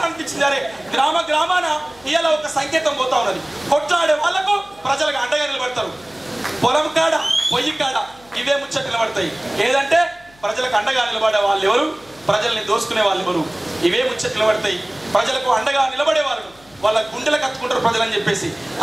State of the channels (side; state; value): left; noise; hum, 28 dB below the sound